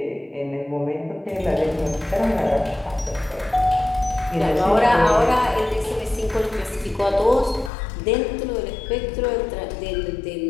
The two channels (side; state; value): right; drops out; at 7.7 s